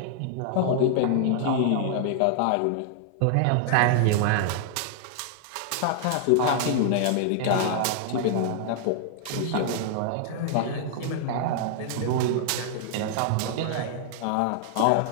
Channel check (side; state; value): both; different; correlation -0.01